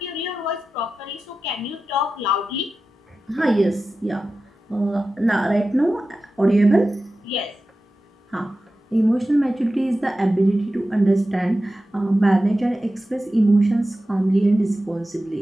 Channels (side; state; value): both; normal; correlation 0.93